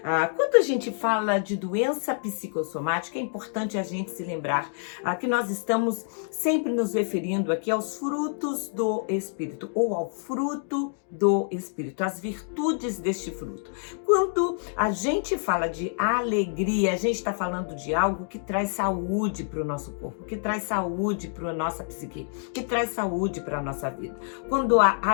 Quando a gente fala de doença psicossomática, é importante a gente se lembrar que nós estamos sempre nos referindo aqui aos frutos do Espírito, ou ao fruto do Espírito, as virtudes deste fruto. Quando a gente fala de alegria, a gente está falando de algo que traz saúde para o nosso corpo, que traz saúde para a nossa psique, que traz saúde para a nossa vida. Quando a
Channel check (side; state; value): right; silent; digital silence